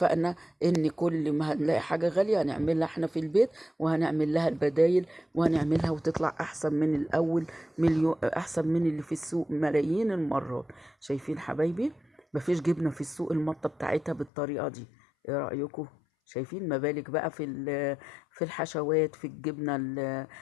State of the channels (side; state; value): right; drops out; at 14.3 s